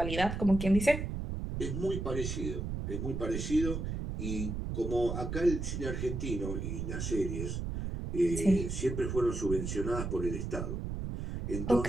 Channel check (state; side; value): noise; right; rumble, 4 dB below the sound